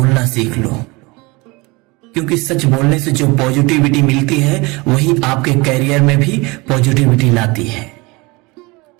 सीख लो, क्योंकि सच बोलने से जो पॉजिटिविटी मिलती है वही आपके कैरियर में भी पॉजिटिविटी लाती है।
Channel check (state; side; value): quieter; left; 25.0 dB